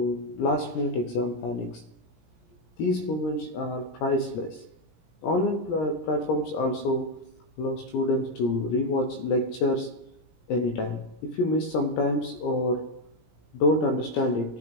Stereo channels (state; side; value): late; right; 17 ms